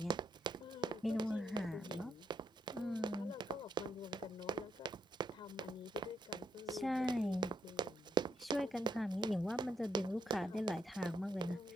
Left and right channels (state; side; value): normal; both; correlation 0.78